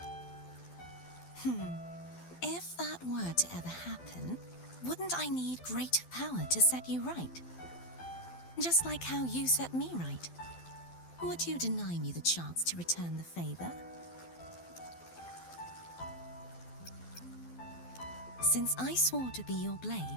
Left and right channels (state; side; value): late; right; 12 ms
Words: If that were to ever happen, wouldn't I need greater power to set you right? Just like how you set me right. Would you deny me the chance to return the favor? Since I swore to be your